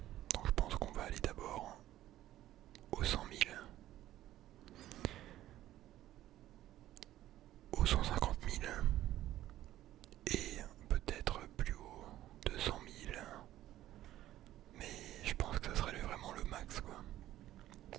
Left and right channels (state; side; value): quieter; left; 13.8 dB